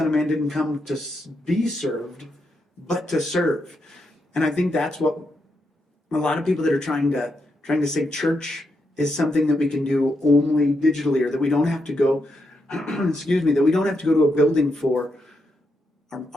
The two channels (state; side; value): normal; both; correlation 0.82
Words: of Man didn't come to be served, but to serve. And I think that's what a lot of people that are trying to say church is something that we can do only digitally, or that we don't have to go, that we don't have to go to a building for,